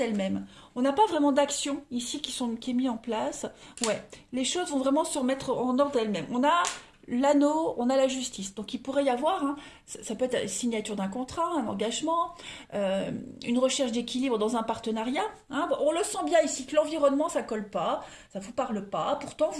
On n'a pas vraiment d'action ici qui est mis en place. Ouais, les choses vont vraiment se remettre en ordre d'elles-mêmes. On a l'anneau, on a la justice. Donc il pourrait y avoir, hein, ça peut être la signature d'un contrat, un engagement, une recherche d'équilibre dans un partenariat. Hein. Bon, on le sent bien ici que l'environnement, ça colle pas, ça vous parle pas. Pourtant,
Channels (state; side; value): identical; both; correlation 1.00